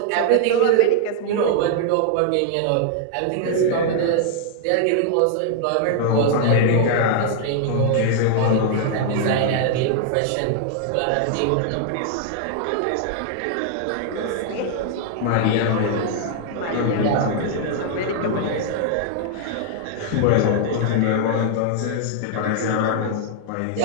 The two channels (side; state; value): both; different; correlation -0.01